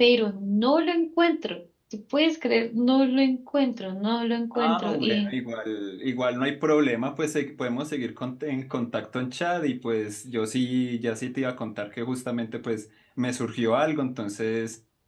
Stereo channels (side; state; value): both; identical; correlation 1.00